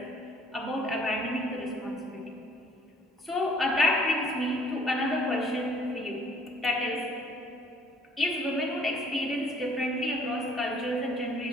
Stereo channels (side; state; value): both; normal; correlation 0.57